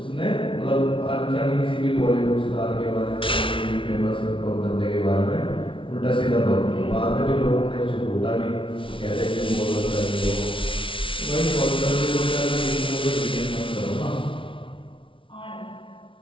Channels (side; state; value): right; late; 0.25 ms